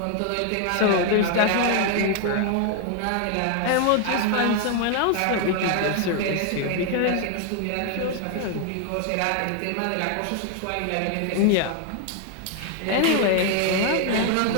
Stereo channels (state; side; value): different; both; correlation 0.00